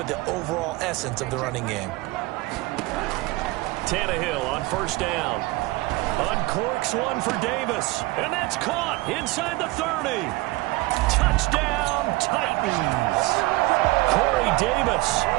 the overall essence of the running game. Tannehill on first down. Uncorks one for Davis. And that's caught inside the 30. Touchdown, Titans. Corey Davis,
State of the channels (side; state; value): left; quieter; 21.1 dB